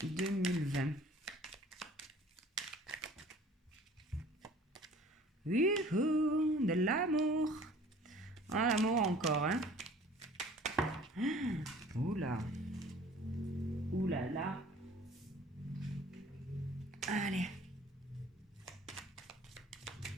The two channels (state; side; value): normal; both; correlation 0.50